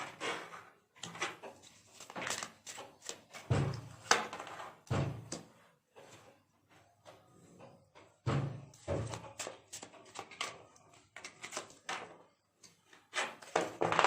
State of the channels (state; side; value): identical; both; correlation 1.00